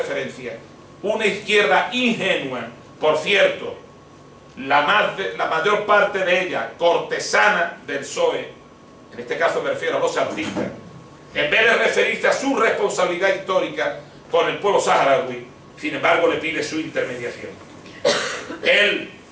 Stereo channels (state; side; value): identical; both; correlation 1.00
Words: una izquierda ingenua, por cierto, la mayor parte de ella cortesana del PSOE, en este caso me refiero a los artistas, en vez de referirse a su responsabilidad histórica con el pueblo saharaui, sin embargo le pide su intermediación. Él,